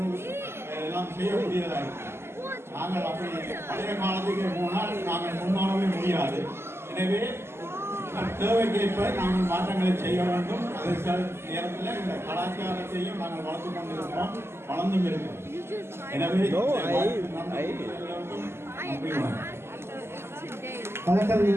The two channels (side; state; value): left; late; 0.12 ms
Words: எல்லாம் செய்யக்கூடியதாக இருக்கும். நாங்கள் அப்படி பழைய காலத்துக்கு போனால் நாங்கள் முன்னேறவே முடியாது. எனவே தேவைக்கேற்ப நாங்கள் மாற்றங்களை செய்ய வேண்டும். அதே நேரத்தில் இந்த கலாச்சாரத்தையும் நாங்கள் வளர்த்து கொண்டிருக்கிறோம், வளர்ந்தும் இருக்கிறோம். எனவே